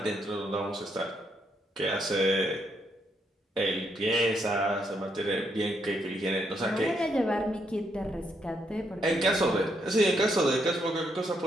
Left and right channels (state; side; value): normal; both; correlation 0.76